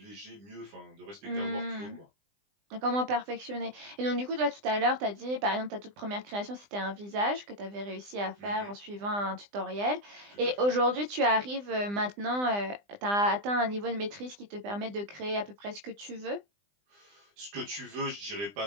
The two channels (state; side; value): late; left; 20 ms